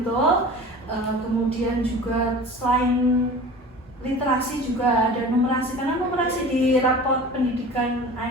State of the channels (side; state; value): both; normal; correlation 0.38